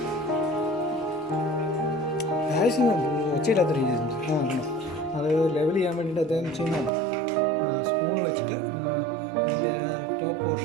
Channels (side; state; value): left; drops out; at 6.9 s